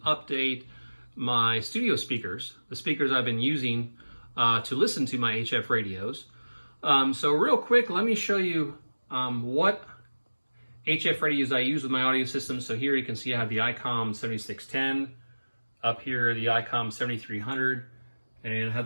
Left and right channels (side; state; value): both; inverted; correlation -1.00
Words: update my studio speakers, the speakers I've been using to listen to my HF radios. So real quick, let me show you what HF radios I use with my audio system. So here you can see I have the ICOM 7610, up here the ICOM 7300, and I have